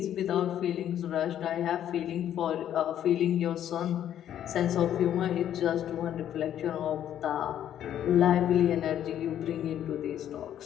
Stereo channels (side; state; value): right; quieter; 10.7 dB